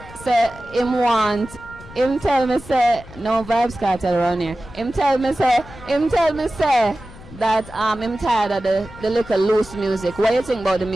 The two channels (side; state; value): left; noise; rumble, 18 dB below the sound